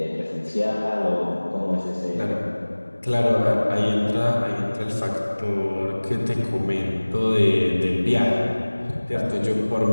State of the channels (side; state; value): both; inverted; correlation -1.00